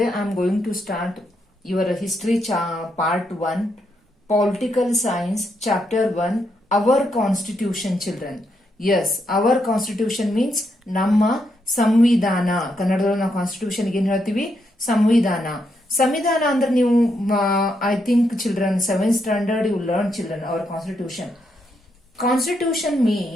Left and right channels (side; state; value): both; normal; correlation 0.79